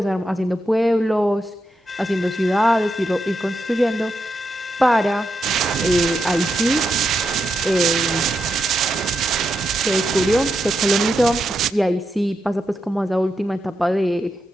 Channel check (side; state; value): both; normal; correlation 0.85